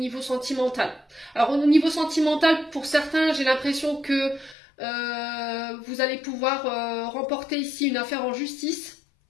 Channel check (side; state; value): right; drops out; at 4.5 s